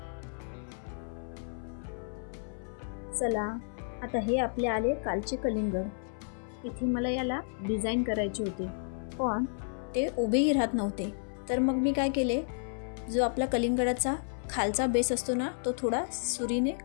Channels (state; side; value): silent; right; 57 dB below the other